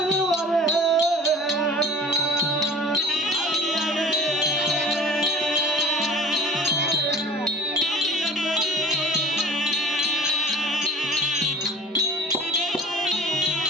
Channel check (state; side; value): normal; both; correlation 0.43